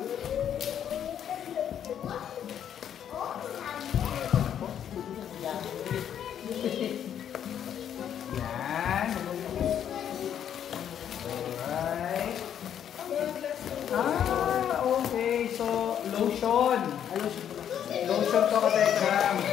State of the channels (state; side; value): quieter; right; 9.4 dB